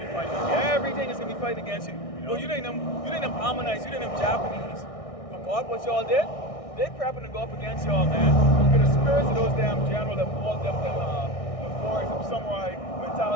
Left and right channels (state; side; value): late; right; 1.6 ms